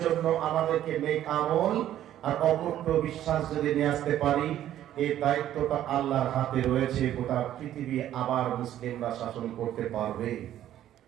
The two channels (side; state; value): left; quieter; 12.0 dB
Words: জন্য আমাদেরকে নেক আমল আর অকুণ্ঠ বিশ্বাস যদি নিয়ে আসতে পারি, এই দায়িত্বটা আল্লাহর হাতে রয়েছে। গোটা পৃথিবী আবার মুসলিমরা শাসন করতে পারবে।